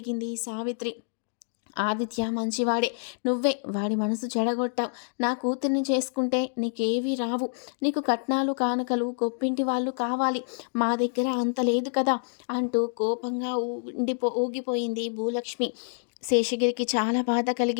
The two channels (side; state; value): right; silent; digital silence